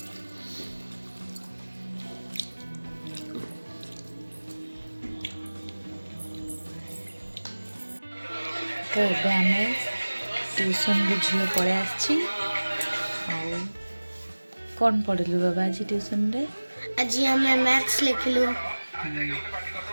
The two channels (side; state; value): both; inverted; correlation -1.00